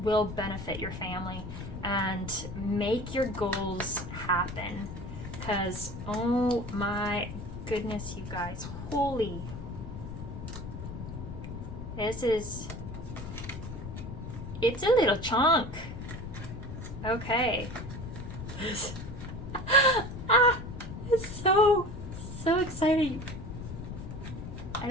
will benefit your family and make your goals happen. Because, oh my goodness, you guys, holy, it's a little chunk. Okay. It's so exciting. I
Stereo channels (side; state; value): left; noise; rumble, 8 dB below the sound